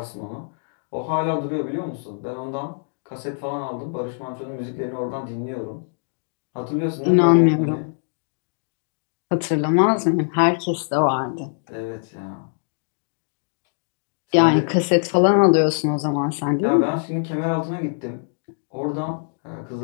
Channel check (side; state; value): right; silent; digital silence